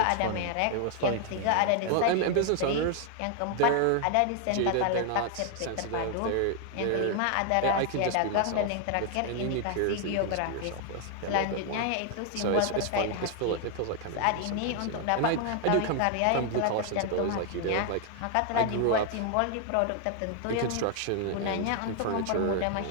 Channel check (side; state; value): both; different; correlation 0.00